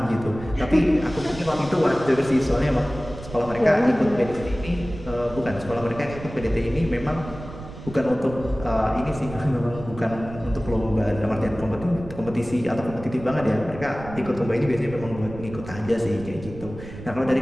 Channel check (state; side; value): noise; right; rumble, 13 dB below the sound